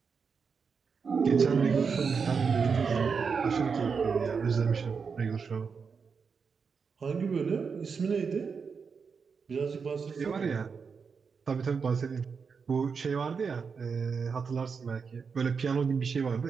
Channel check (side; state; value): left; quieter; 5.6 dB